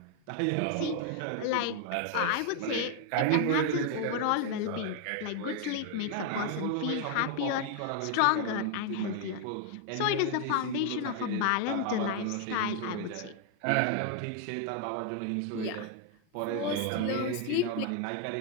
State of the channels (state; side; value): different; both; correlation 0.00